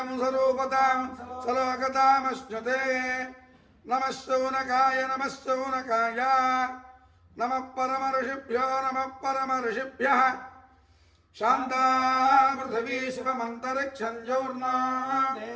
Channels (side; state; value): both; identical; correlation 1.00